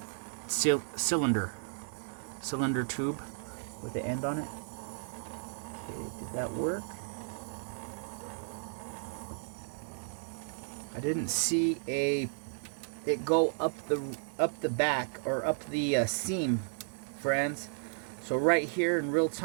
cylinder tube with the end on it. Okay, did that work? I didn't see it go up the back or up the seam, friends. So right here in real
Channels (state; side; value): silent; left; digital silence